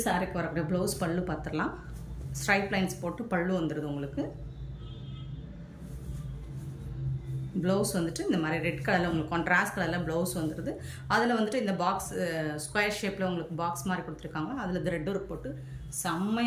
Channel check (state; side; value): identical; both; correlation 1.00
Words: சாரிக்கு வரக்கூடிய ப்ளவுஸ் பல்லு பார்த்துடலாம். ஸ்ட்ரைப் லைன்ஸ் போட்டு பல்லு வந்துடுது உங்களுக்கு. ப்ளவுஸ் வந்துட்டு இந்த மாதிரி ரெட் கலரில் உங்களுக்கு கான்ட்ராஸ்ட் கலரில் ப்ளவுஸ் வந்துடுது. அதில் வந்துட்டு இந்த பாக்ஸ் ஸ்கொயர் ஷேப்பில் உங்களுக்கு பாக்ஸ் மாதிரி கொடுத்துருக்காங்க. அதில் இந்த ரெட் ஒர்க் போட்டு